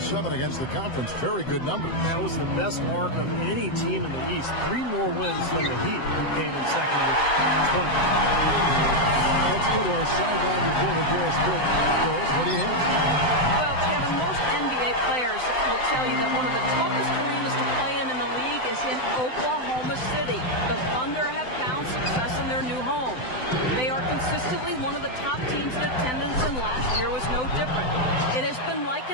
against the conference. Very good numbers. That was the best mark of any team in the East. 3 more wins than the Heat, who came in second with 20. Let's go to our sideline reporter, Doris Burke. Doris, what do you have? Well, Kevin, Kevin, most NBA players will tell you that one of the toughest arenas to play in the league is in Oklahoma City. The Thunder have found success in their new home. They are consistently one of the top teams in attendance, and last year was no different. It has been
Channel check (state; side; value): late; right; 7.8 ms